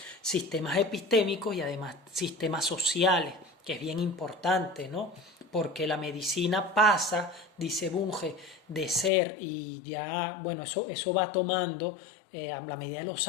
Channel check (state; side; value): drops out; right; at 9.1 s